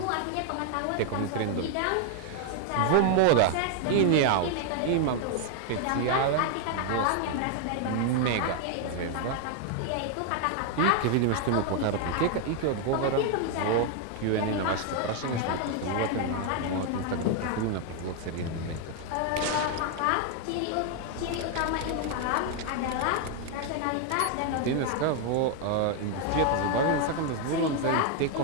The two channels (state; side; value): different; both; correlation 0.00